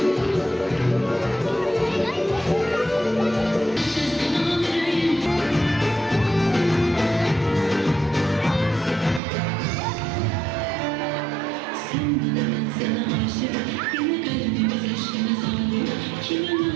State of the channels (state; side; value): drops out; left; at 9.2 s